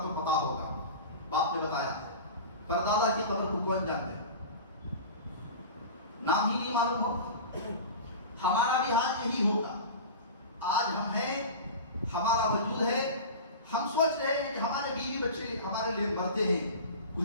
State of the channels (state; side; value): inverted; both; correlation -0.32